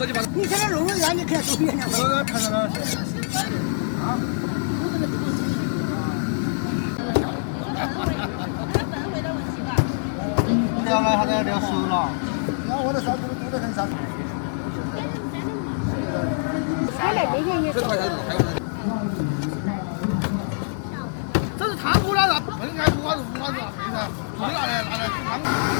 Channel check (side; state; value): right; silent; digital silence